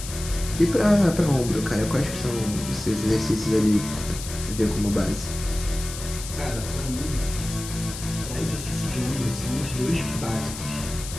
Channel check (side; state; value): left; noise; hiss, 10 dB below the sound